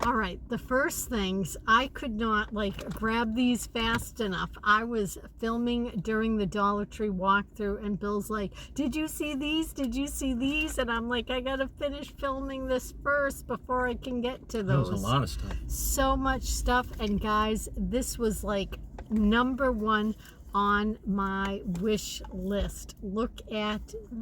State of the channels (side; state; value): both; identical; correlation 1.00